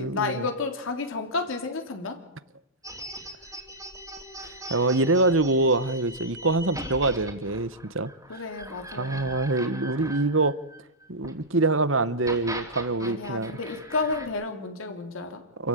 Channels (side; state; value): both; normal; correlation -0.11